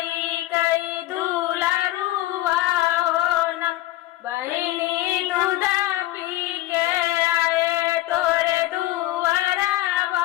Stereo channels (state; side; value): quieter; right; 16.1 dB